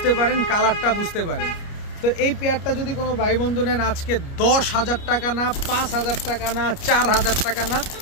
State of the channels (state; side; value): late; right; 29 ms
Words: পারেন, কালারটা বুঝতে পারেন। তো এই পেয়ারটা যদি কোনো ভাই বন্ধু নেন আজকে 10,000 টাকা না, 5,000 টাকা না, 4,000 টাকা না,